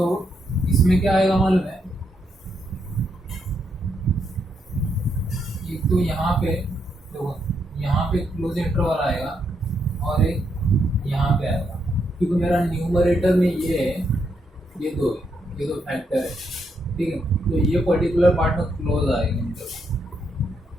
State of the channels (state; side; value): normal; both; correlation 0.78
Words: इसमें क्या आएगा मालूम है, एक तो यहाँ पे क्लोज इंटरवल आएगा और एक यहाँ पे आएगा, क्योंकि मेरा न्यूमरेटर में ये है, ये दो फैक्टर है, ठीक है, तो ये पर्टिकुलर पार्ट में क्लोज आएगा इंटरवल,